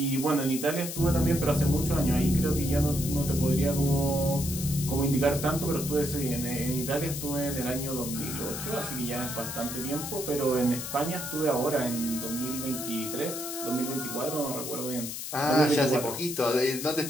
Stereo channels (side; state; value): left; noise; hiss, 6 dB below the sound